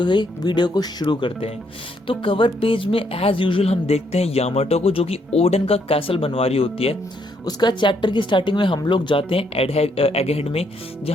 वीडियो को शुरू करते हैं। तो कवर पेज में एज यूजुअल हम देखते हैं यामाटो को, जो कि ओडन का कैसल बनवा रही होती है। उसका चैप्टर की स्टार्टिंग में हम लोग जाते हैं एगहेड में,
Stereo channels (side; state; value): both; normal; correlation 0.73